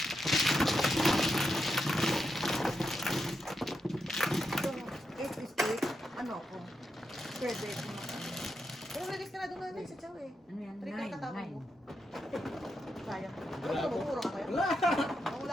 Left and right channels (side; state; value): both; normal; correlation 0.85